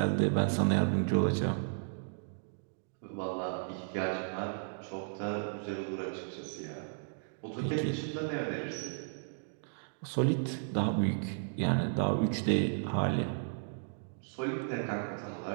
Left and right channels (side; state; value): left; silent; digital silence